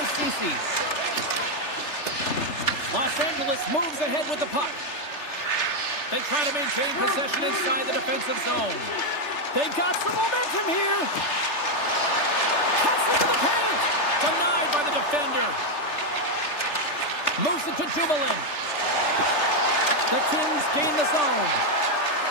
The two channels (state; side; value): late; right; 3.3 ms